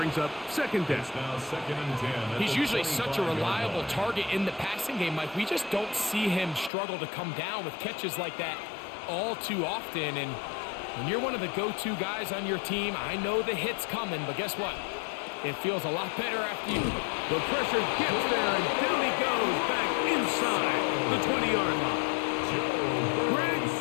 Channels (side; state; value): right; drops out; at 6.7 s